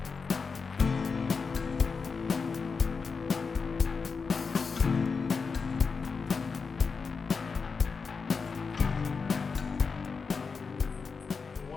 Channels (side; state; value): right; quieter; 5.1 dB